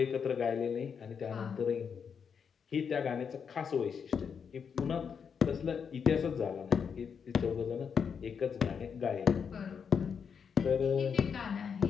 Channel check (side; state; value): right; quieter; 6.7 dB